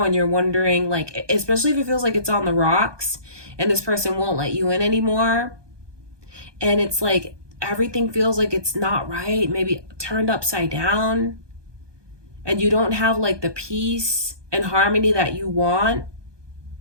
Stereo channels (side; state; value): left; late; 1.2 ms